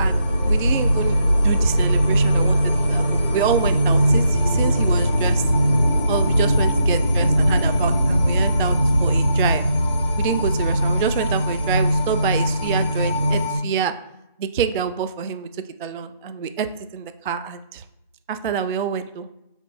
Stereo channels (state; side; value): inverted; both; correlation -0.76